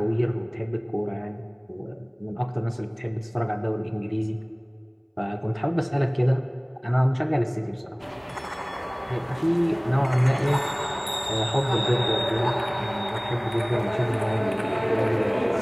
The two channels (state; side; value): identical; both; correlation 1.00